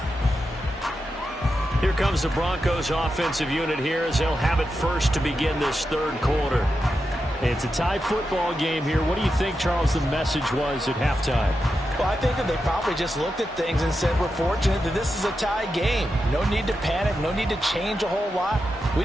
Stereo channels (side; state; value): both; normal; correlation 0.88